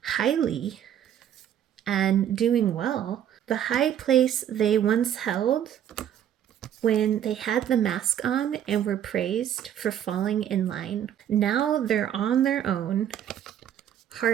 highly and doing well. The high place they once held when they had the mask on and were praised for falling in line. Now they're on their own,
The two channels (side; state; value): left; quieter; 10.1 dB